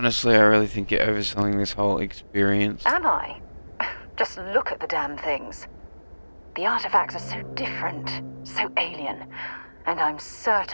I really think you're overselling this whole experience. Am I? Just look at the damn things. The artifacts are so different, so alien, and I'm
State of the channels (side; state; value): both; inverted; correlation -1.00